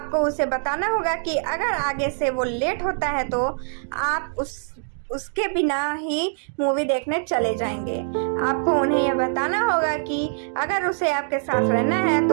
उसे बताना होगा कि अगर आगे से वो लेट होता है तो आप उसके बिना ही मूवी देखने चले जाएंगे। आपको उन्हें यह बताना होगा कि अगर उसे आपके साथ रहना है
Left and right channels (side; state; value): left; silent; digital silence